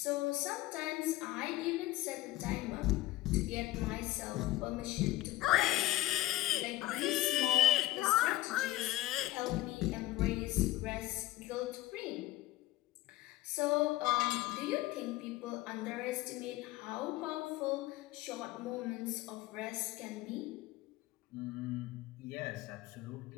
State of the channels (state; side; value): quieter; right; 16.9 dB